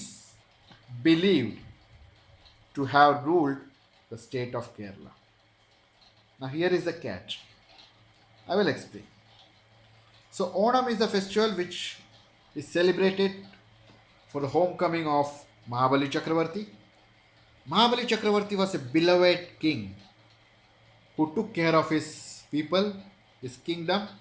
believed to have ruled the state of Kerala. Now, here is the catch. I will explain. So, Onam is the festival which is celebrated for the homecoming of Mahabali Chakravarti. Mahabali Chakravarti was a beloved king who took care of his people, his kingdom,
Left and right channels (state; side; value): identical; both; correlation 1.00